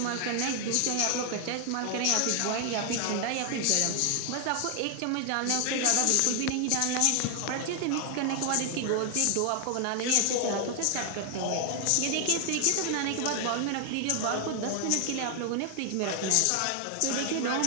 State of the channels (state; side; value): different; both; correlation 0.00